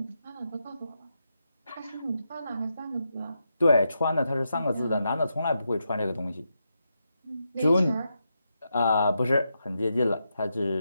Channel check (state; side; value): inverted; both; correlation -0.85